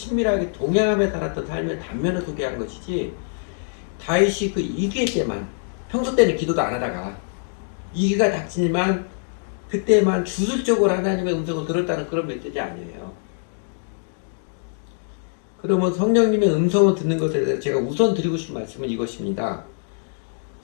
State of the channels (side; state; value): right; silent; digital silence